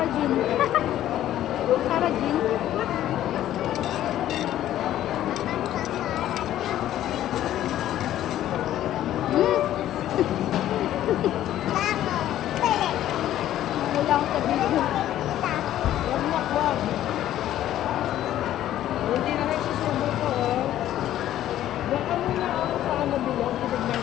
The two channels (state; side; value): quieter; right; 12.6 dB